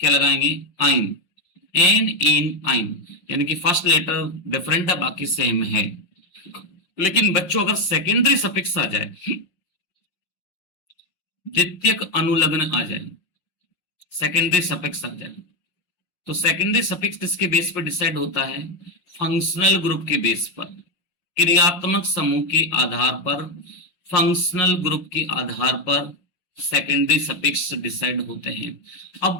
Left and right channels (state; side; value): late; right; 5.6 ms